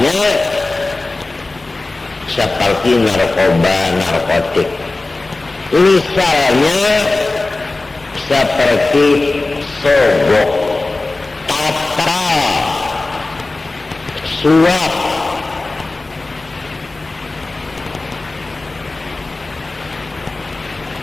seperti narkoba, narkotik. Misalnya seperti sogok, tata, suap.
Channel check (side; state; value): right; quieter; 3.2 dB